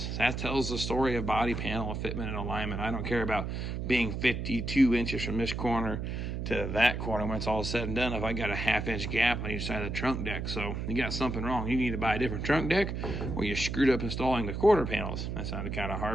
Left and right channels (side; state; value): right; noise; hum, 3 dB below the sound